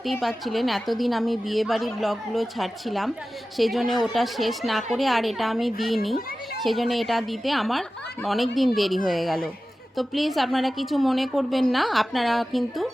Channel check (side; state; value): both; normal; correlation 0.95